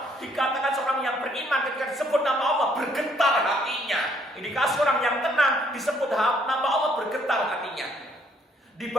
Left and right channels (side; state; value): both; normal; correlation 0.66